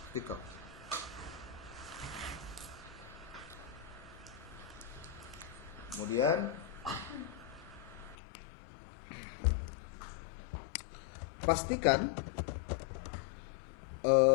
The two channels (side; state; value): right; drops out; at 8.2 s